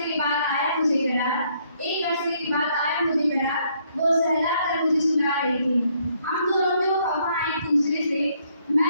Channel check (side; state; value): both; inverted; correlation -0.69